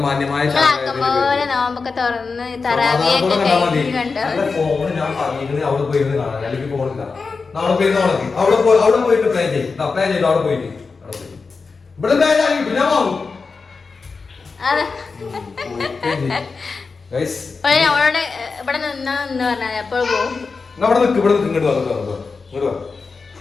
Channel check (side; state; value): right; quieter; 4.6 dB